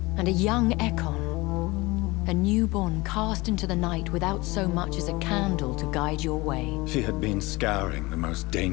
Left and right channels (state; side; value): quieter; right; 22.5 dB